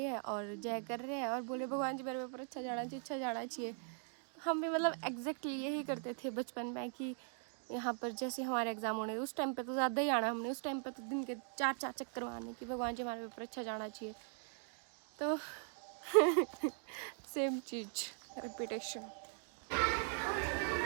हैं और जय कर रहे हैं और बोले भगवान जी मेरे पेपर अच्छा जाना चाहिए, अच्छा जाना चाहिए। हम भी मतलब एग्जैक्टली यही करते थे बचपन में कि यहाँ पर जैसे हमारे एग्ज़ाम होने, उस टाइम पे तो ज़्यादा ही आना हमने, उस टाइम पे तो दिन के 4-4 चक्कर मारने कि भगवान जी हमारे पेपर अच्छा जाना चाहिए। तो सेम चीज़ रिपीटेशन।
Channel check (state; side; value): silent; left; 51 dB below the other